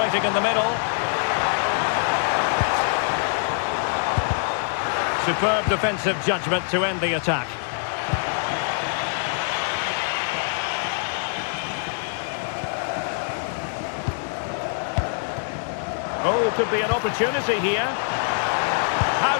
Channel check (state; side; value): silent; right; digital silence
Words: in the middle. Superb defensive judgment to end the attack. Oh, could be an opportunity here. How